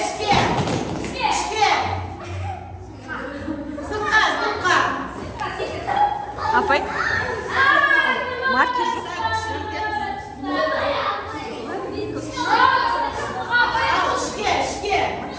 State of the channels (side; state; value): both; identical; correlation 1.00